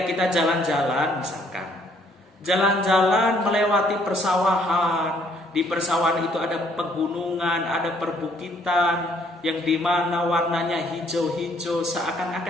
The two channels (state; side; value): normal; both; correlation 0.65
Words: kita jalan-jalan misalkan, jalan-jalan melewati persawahan. Di persawahan itu ada pegunungan, ada perbukitan yang dimana warnanya hijau-hijau,